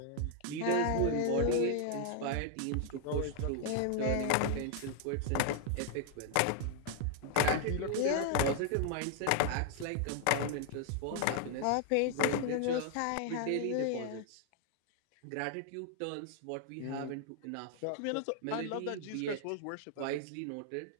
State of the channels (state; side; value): different; both; correlation 0.00